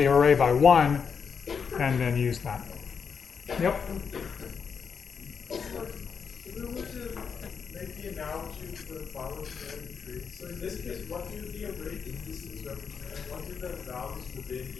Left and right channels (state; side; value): quieter; right; 6.3 dB